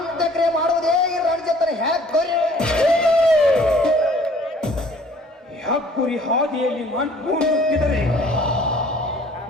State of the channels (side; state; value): both; normal; correlation 0.55